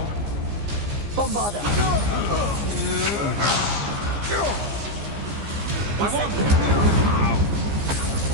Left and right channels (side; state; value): left; late; 15 ms